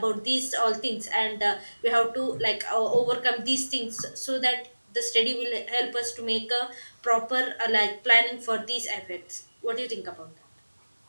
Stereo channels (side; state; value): both; inverted; correlation -1.00